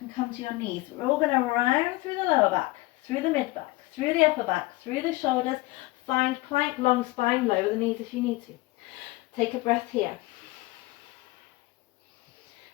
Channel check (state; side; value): quieter; right; 20.9 dB